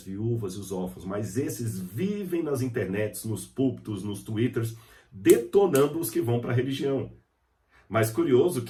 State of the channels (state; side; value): identical; both; correlation 1.00